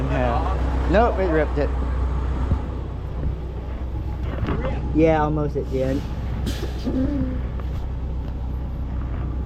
half. Nope, it ripped it. Yeah, almost it did.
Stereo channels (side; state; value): both; identical; correlation 1.00